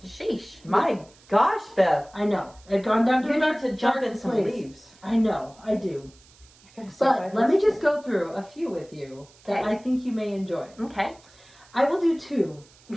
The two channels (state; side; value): noise; right; hiss, 27 dB below the sound